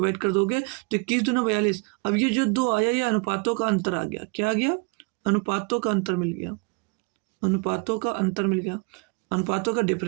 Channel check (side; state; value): left; quieter; 29.9 dB